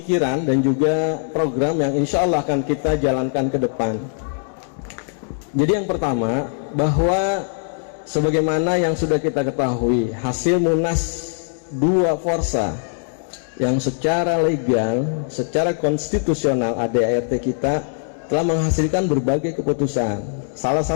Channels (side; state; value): right; silent; digital silence